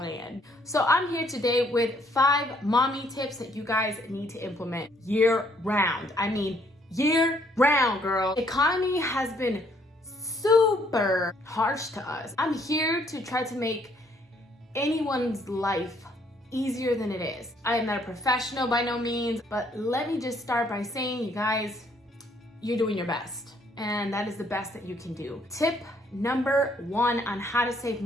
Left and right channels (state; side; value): normal; both; correlation 0.67